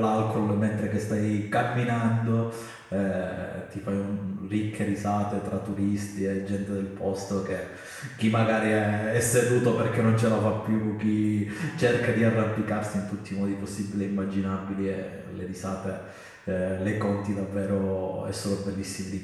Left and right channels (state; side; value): identical; both; correlation 1.00